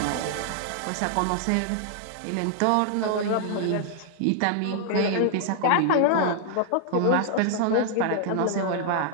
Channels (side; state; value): both; different; correlation 0.00